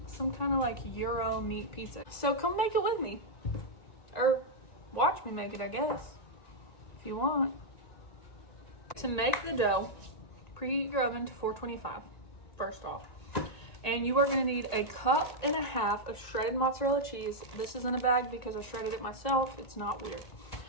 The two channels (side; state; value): right; late; 1.9 ms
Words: some kind of like Euro meat pizza. So come make it with me. Or watch me make it, I guess, if you want. To make the dough, preheat your oven to 425, first off. And you are gonna need 1.5 cups of shredded mozzarella cheese. This is in a bag because I shredded it myself. It's not weird.